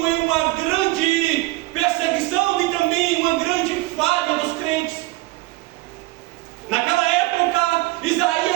em uma grande perseguição e também uma grande falha dos crentes. Naquela época,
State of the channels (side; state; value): left; quieter; 20.9 dB